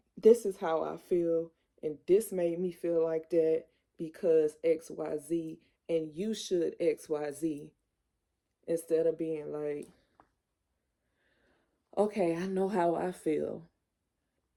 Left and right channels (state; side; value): identical; both; correlation 1.00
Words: this is how I feel and this made me feel like that because XYZ and you should XYZ, instead of being like, okay, I know how I feel